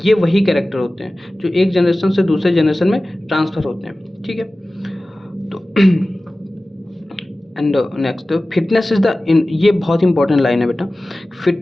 ये वही कैरेक्टर होते हैं जो एक जनरेशन से दूसरे जनरेशन में ट्रांसफ़र होते हैं। ठीक है, तो and next, fitness is the, ये बहुत इंपॉर्टेंट लाइन है बेटा,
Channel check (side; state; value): both; normal; correlation 0.97